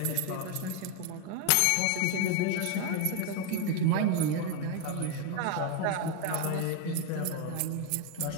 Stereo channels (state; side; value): different; both; correlation 0.01